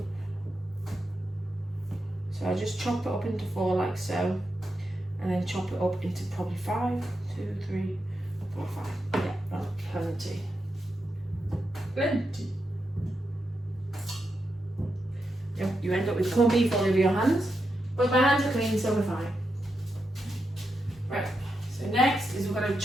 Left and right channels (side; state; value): both; normal; correlation 0.86